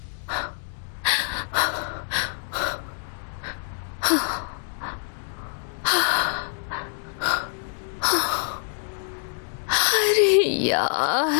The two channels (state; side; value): silent; right; 61 dB below the other